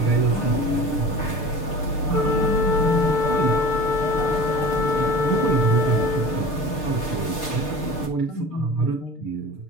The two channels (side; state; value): right; late; 6.6 ms